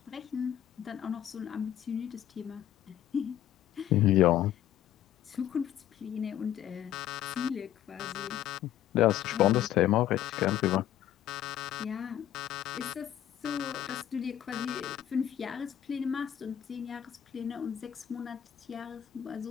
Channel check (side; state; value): right; quieter; 11.3 dB